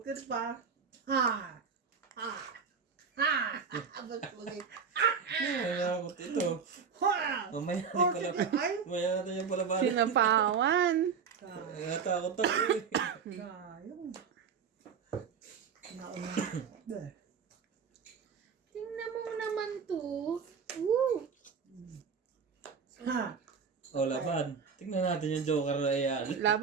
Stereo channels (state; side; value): quieter; left; 6.2 dB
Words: pa. Ha! Ha! Ha! Boss Pogi. Nalakot ito. Ha! Mamaya natin pala. Ay! Mamaya natin yung pala balik. Sinapawan. Natakot ako eh. Sayang. Nauna. Tingnan mo naman to. Woo! Ha! O, laban. Tingnan natin yung Joker na yan.